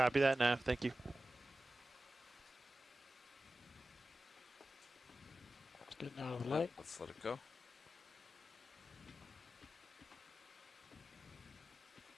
that, Neff. Thank you. It's getting out of the light. Let's let it go.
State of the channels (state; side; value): normal; both; correlation 0.95